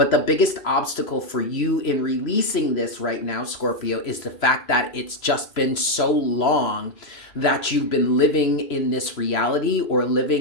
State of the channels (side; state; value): right; late; 3.0 ms